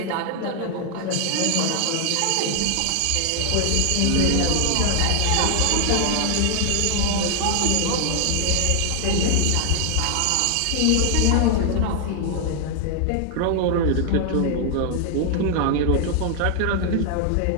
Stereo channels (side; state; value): both; different; correlation 0.00